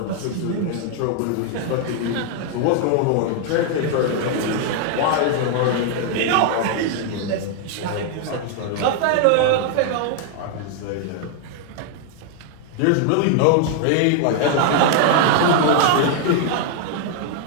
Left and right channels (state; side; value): different; both; correlation 0.00